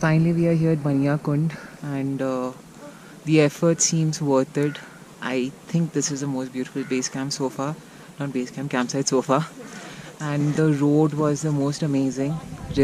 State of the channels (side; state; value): both; identical; correlation 1.00